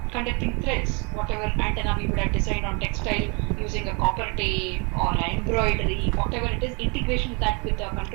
conducting threads, whatever antenna we would have designed on textile using a copper tape or an embroidery, whatever it is, integration with that with the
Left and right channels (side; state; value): left; quieter; 32.3 dB